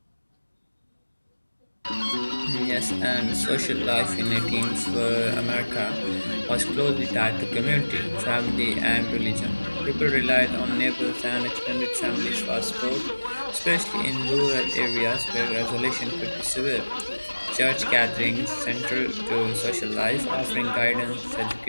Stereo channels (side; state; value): both; inverted; correlation -1.00